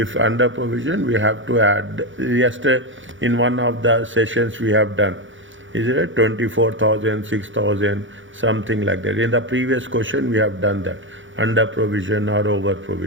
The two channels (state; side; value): late; left; 0.56 ms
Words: have to add. Yesterday in one of the sessions we have done, is it 24,000, 6,000, something like that. In the previous question we have done that, under provision or over